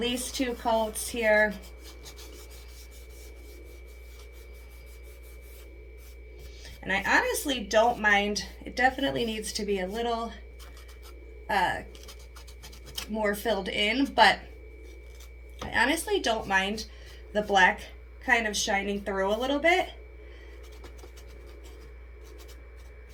2 coats here. And I honestly don't mind. It definitely needs to be a little more filled in, but I honestly don't mind the black kind of shining through a little bit.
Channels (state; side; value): identical; both; correlation 1.00